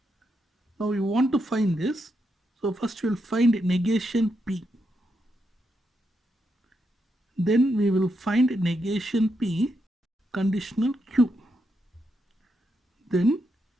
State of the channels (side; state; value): both; normal; correlation 0.82